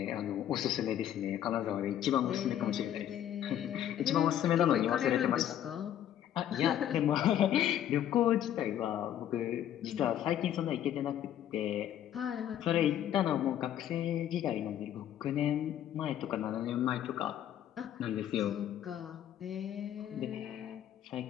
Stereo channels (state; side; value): quieter; right; 10.9 dB